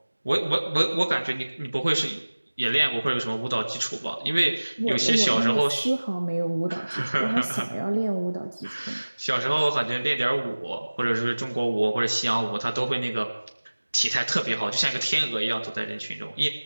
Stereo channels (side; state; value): both; inverted; correlation -1.00